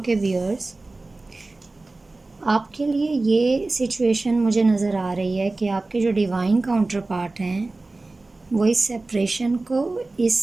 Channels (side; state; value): left; quieter; 3.2 dB